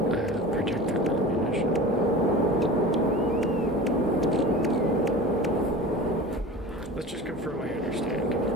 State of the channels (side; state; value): both; normal; correlation 0.35